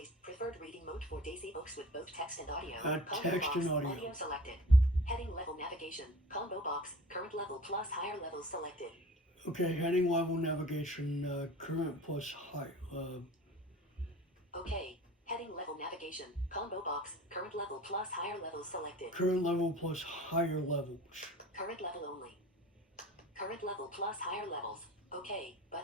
preferred reading mode for Daisy books with both text and audio. Combo text box. and audio. Audio selected. Heading level navigation. Combo box. Current level plus higher level selected. okay, heading level navigation, current plus high. Okay. Heading level navigation. Combo box. Current level plus higher level selected. Current level plus higher levels. Current level only. Current level plus higher levels. OK.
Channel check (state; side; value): normal; both; correlation 0.43